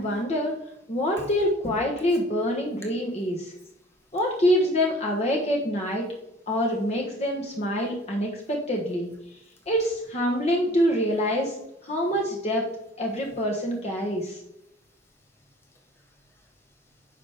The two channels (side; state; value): both; normal; correlation 0.48